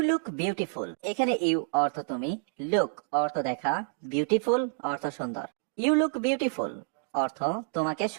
look beautiful. এখানে ইউ অর্থ তুমি, লুক অর্থ দেখা, বিউটিফুল অর্থ সুন্দর। ইউ লুক বিউটিফুল অর্থ তোমাকে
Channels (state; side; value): silent; left; digital silence